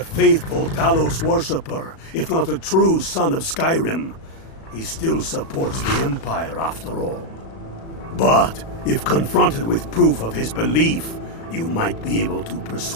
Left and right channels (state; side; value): late; right; 36 ms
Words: faithful Talos worshipper, if not a true son of Skyrim. He still supports the Empire, after all. But, if confronted with proof of his belief, you might be able to